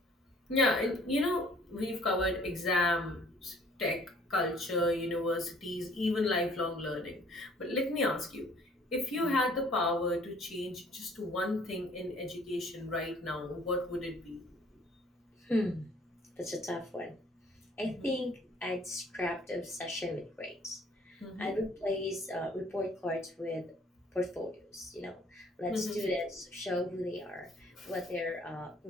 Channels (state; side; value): normal; both; correlation 0.57